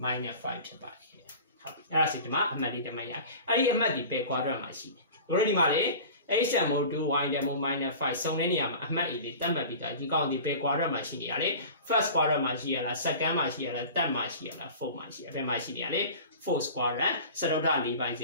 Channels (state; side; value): inverted; both; correlation -0.38